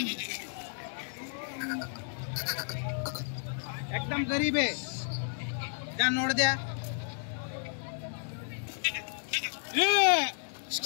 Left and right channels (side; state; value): right; silent; digital silence